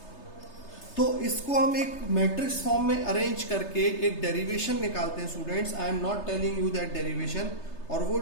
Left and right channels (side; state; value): right; late; 3.3 ms